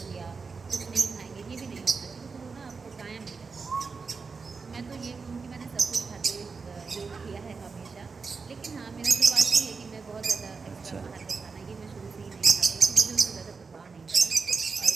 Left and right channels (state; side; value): quieter; left; 4.8 dB